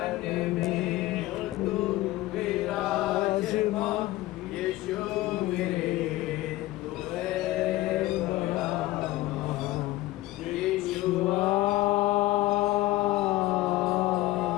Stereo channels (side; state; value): right; quieter; 17.4 dB